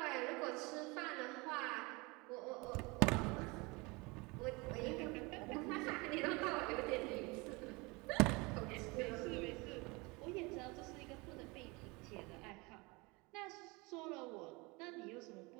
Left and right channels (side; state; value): left; quieter; 26.0 dB